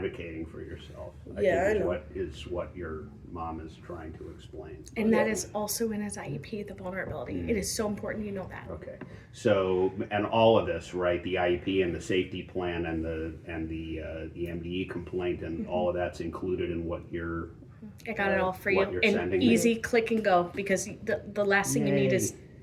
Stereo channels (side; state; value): both; identical; correlation 1.00